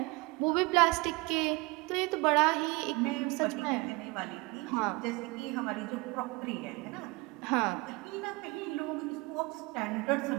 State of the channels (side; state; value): left; quieter; 24.9 dB